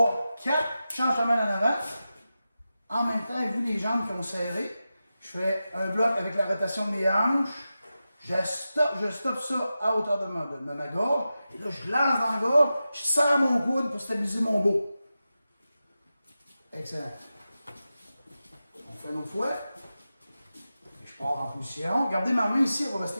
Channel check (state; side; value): inverted; both; correlation -0.93